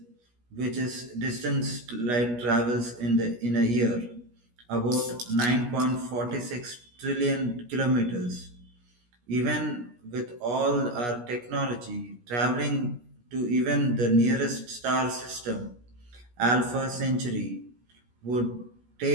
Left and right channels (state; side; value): late; left; 17 ms